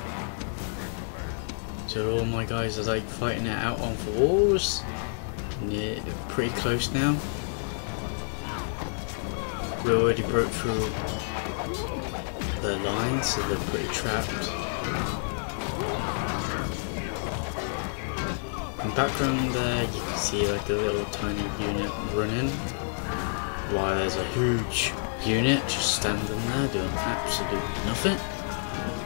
So all my guys are like fighting it out on the walls. Yeah, pretty close now. We already broke through their lines, so they're pretty trapped. In the background there, you can see like a little tiny unit running, while there's a huge unit just standing there doing absolutely nothing.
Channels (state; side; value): silent; right; digital silence